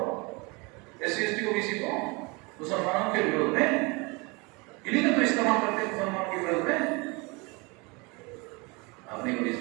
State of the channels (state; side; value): quieter; left; 27.6 dB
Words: एससी एसटी ओबीसी को मुसलमानों के विरोध में, इन्हीं का तो इस्तेमाल करते हैं मुसलमानों के विरोध में। आपने कभी